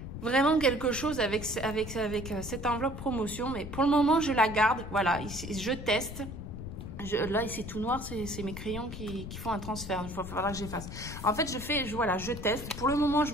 vraiment quelque chose avec cette enveloppe promotion. Mais pour le moment, je la garde. Voilà, je teste. Là, ici, tout noir, c'est mes crayons qui font un transfert. Il faudra que j'efface. En fait, je teste. Pour le moment, je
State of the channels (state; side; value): noise; left; rumble, 9 dB below the sound